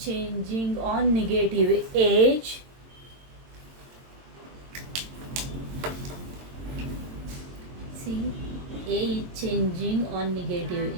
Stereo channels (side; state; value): left; late; 22 ms